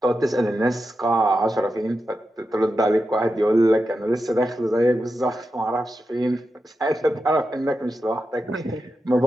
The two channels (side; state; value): both; normal; correlation 0.89